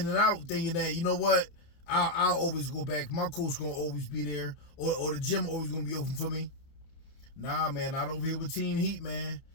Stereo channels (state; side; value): late; right; 30 ms